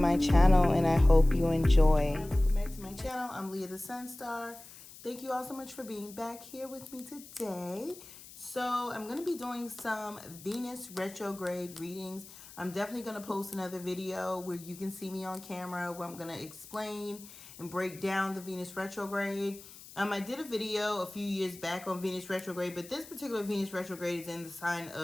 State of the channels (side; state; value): left; noise; hiss, 18 dB below the sound